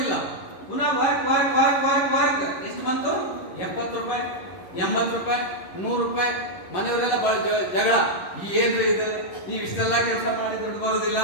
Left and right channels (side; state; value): right; late; 11 ms